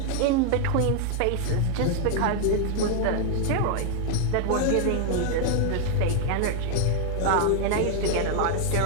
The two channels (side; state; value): both; different; correlation 0.00